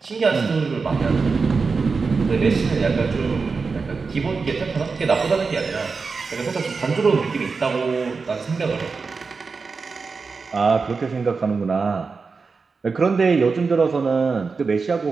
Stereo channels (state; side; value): quieter; left; 4.7 dB